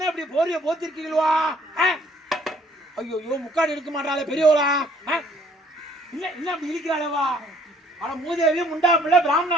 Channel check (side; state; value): both; normal; correlation 0.61